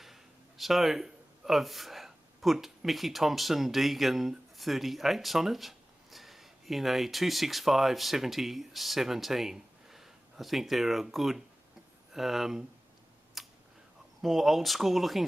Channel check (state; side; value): normal; both; correlation 0.97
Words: So I've put Mickey Thompson Deegan 38s on it in a 265/70/17. I think they're a good, more old school